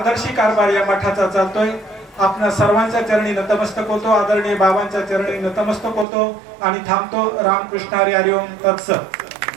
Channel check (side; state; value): left; drops out; at 6.1 s